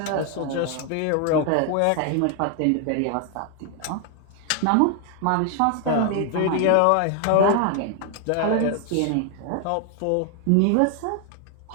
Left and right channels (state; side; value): different; both; correlation 0.00